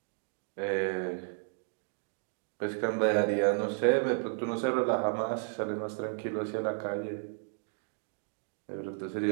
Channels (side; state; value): left; silent; digital silence